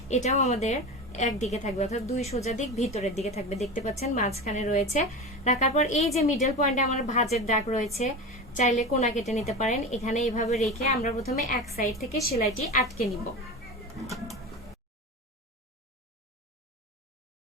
এটাও আমাদের একদিকে থাকবে, অর্থাৎ 2 সোজা দিক ভিতরের দিকে থাকবে। দেখতে পাচ্ছেন মাঝখানে রয়েছে। রাখার পর এই যে মিডল পয়েন্টে আমার ভাঁজের দাগ রয়েছে, চাইলে কোনা কেটে নিতে পারেন। এখানে এইভাবে রেখে আমরা প্রথমে এক সাইড থেকে সেলাইটি আটকে নিব।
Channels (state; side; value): normal; both; correlation 0.27